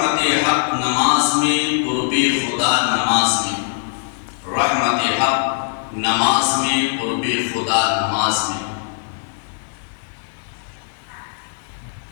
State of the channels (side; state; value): right; silent; 58 dB below the other